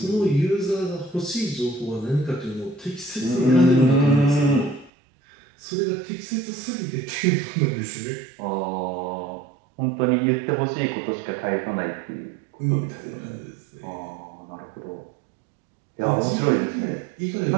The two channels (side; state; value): left; drops out; at 4.9 s